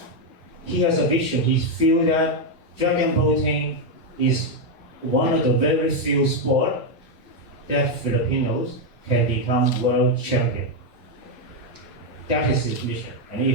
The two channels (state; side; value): normal; both; correlation 0.03